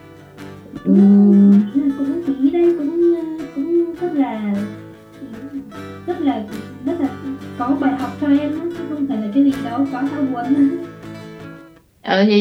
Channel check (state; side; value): identical; both; correlation 1.00